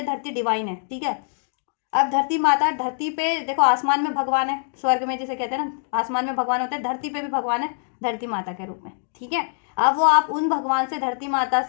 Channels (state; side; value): silent; right; digital silence